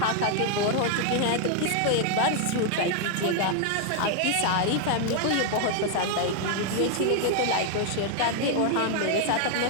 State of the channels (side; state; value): both; different; correlation 0.00